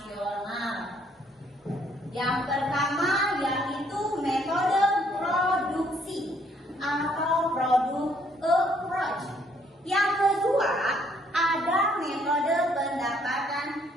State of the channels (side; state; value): both; normal; correlation 0.66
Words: Yang pertama yaitu metode produksi atau product approach. Yang kedua ada metode pendapatan